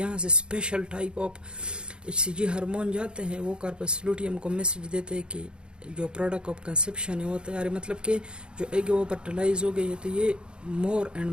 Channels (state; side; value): late; left; 0.051 ms